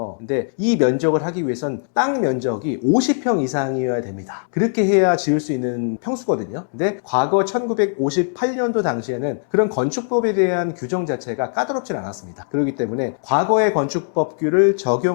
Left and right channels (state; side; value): silent; right; digital silence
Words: 근데 이 면적을 하기 위해선 땅 면적이 50평 이상이어야 됩니다. 그렇게 해야 지을 수 있는 평수거든요. 근데 과거 1958년도 당시에는 그런 건축법에 대한 규정 자체가 까다롭진 않았습니다. 그렇기 때문에 과거의 건축법규를